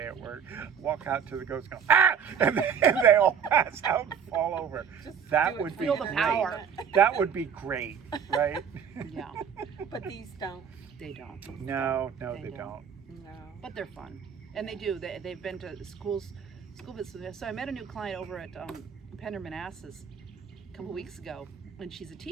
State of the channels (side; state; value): left; quieter; 7.2 dB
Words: at work. Walk out to the ghost, go, ah! And they all pass out and fall over. Just That do it would for be Feel the great. power. That would be great, right? Yeah. But these don't. They don't. No, They they don't. don't. No. But they're fun, and they do. They've been to school visits. So I met a new client over at Pender Manassas a couple weeks ago, and she's a